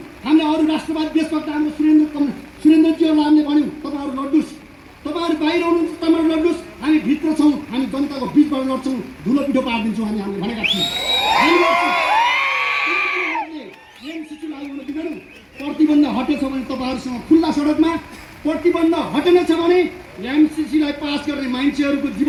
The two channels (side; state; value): both; identical; correlation 1.00